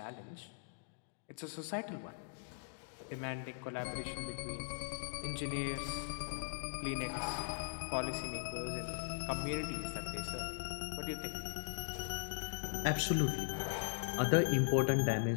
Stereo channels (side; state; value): right; silent; digital silence